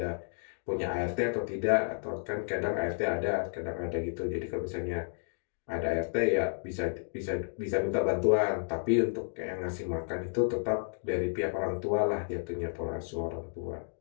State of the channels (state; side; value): silent; right; digital silence